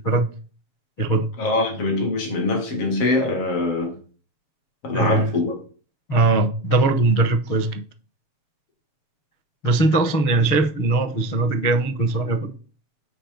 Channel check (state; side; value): late; right; 7.0 ms